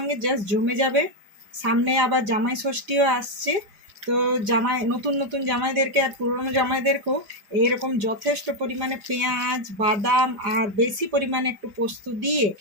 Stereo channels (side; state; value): left; late; 4.9 ms